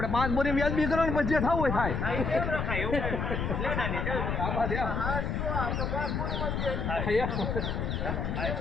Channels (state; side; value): noise; left; rumble, 1 dB below the sound